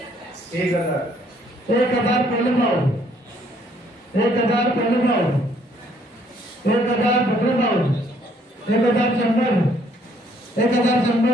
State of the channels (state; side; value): normal; both; correlation 0.65